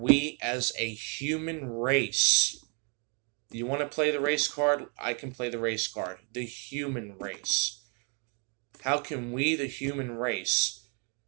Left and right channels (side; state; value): left; quieter; 38.7 dB